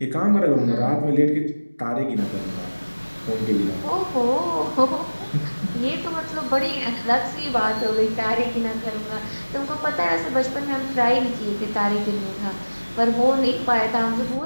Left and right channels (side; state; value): both; inverted; correlation -1.00